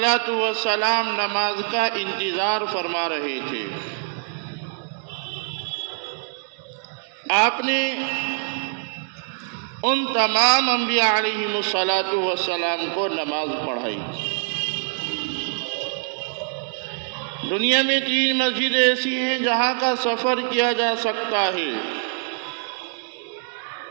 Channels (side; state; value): left; silent; digital silence